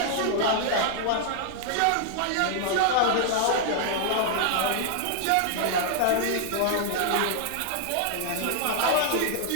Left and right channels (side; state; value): both; different; correlation -0.01